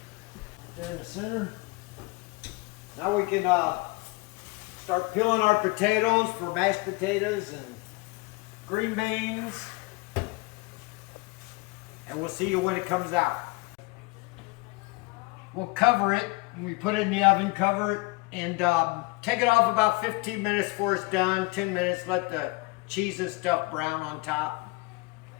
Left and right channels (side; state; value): right; quieter; 25.2 dB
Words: There in the center. Now we can start peeling our potatoes for mashed potatoes and green beans. And we'll see you when it comes out. We'll cover it. We put it in the oven, cover it, and take it off about 15 minutes before it's done. 10 minutes, let the cheese and stuff brown on top.